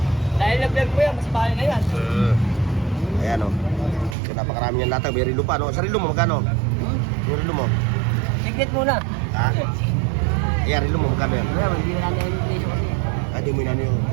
Dahil na-vlog ko yan, mas bahay na yan. Ayan o. So, napakarami niyang latag. May rilo pa, no? Sa rilo mo, magkano? Yung rilo mo? Signet muna. Ha? Ayan, rilo mo, magkano yan? Wala, hindi na namin yung presyo kasi. Hindi mo na yung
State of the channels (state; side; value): drops out; left; at 4.2 s